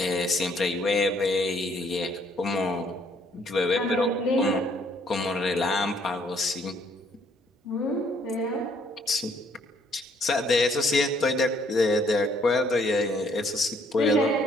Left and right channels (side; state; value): both; normal; correlation 0.65